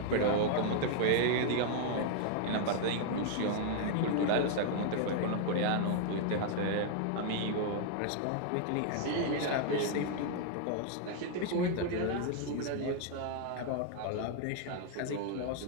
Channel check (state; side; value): different; both; correlation 0.00